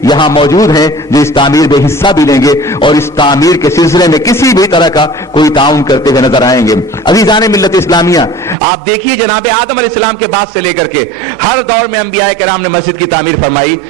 یہاں موجود ہیں, جو اس تعمیر میں حصہ بھی لیں گے اور اس تعمیر کے سلسلے میں کسی بھی طرح کا کوئی تعاون کرتے ہوئے نظر آئیں گے. عزیزان ملت اسلامیہ, آپ دیکھیے جناب آدم علیہ السلام کے بعد سے لے کر کے ہر دور میں انبیاء کرام نے مسجد کی تعمیر فرمائی.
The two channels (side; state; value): left; drops out; at 8.6 s